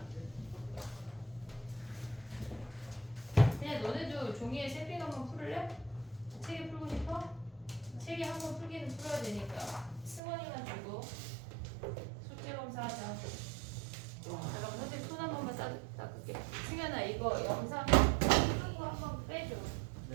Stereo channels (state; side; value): drops out; left; at 10.2 s